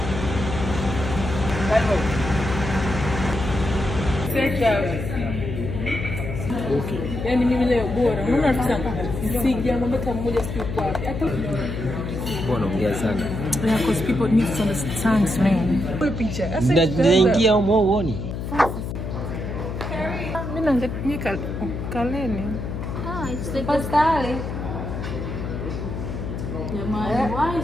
Okay. Yani mimi leo bora. Unaona tunataka sija mambo kama mmoja siku kwa. Hata mbona ongea sana. Yeah, because people need to understand man. Kwa picha. Naingia huko uone. Mimi naangalia kaleni. It's the pastale.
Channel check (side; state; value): left; noise; hum, 5 dB below the sound